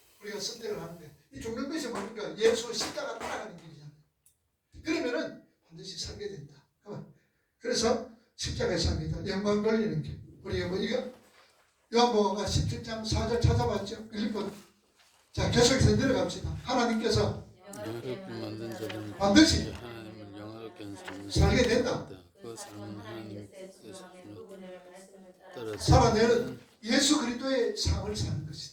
우리가 선택을 하는데 이 죽는 예수 십자가 따라가는 길이잖아요. 그러면은 반드시 살게 된다. 그래서 십자가에 삽니다. 영광 돌리는 길. 우리 뭐 이거 요한복음가 17장 4절 찾아봤죠? 1번. 자, 계속해서 내려갑시다. 하나님께서 영화롭게 만든 자들은 반드시 하나님을 영화롭게 하는 삶을 살게 된다. 그 삶은 하나님께서 따라 살아내는 예수 그리스도의 삶을 사는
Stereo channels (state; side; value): identical; both; correlation 1.00